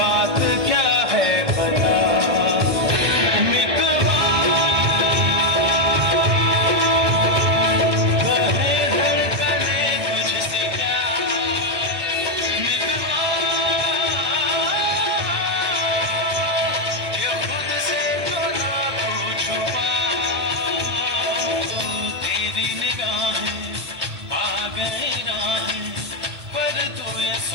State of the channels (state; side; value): late; left; 1.6 ms